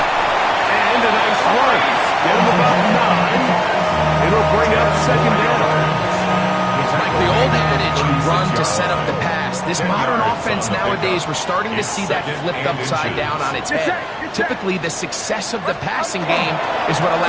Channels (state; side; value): identical; both; correlation 1.00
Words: And a nice run. Get him about 9. It'll bring up second down. Like the old adage, you run to set up the pass. This modern offense nowadays, we're starting to see that flipped upside down on its head. Typically, the success of the passing game is what